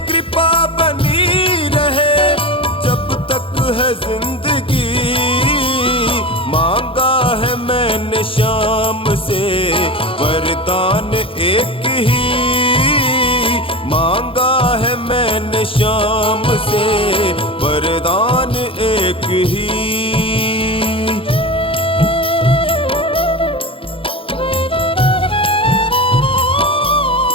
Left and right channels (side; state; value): right; late; 0.26 ms